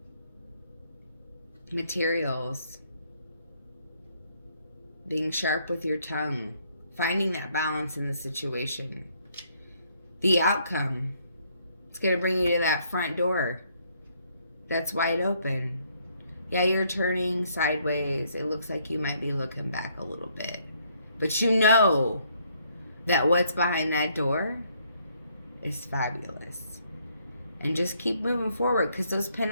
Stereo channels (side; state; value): both; inverted; correlation -0.69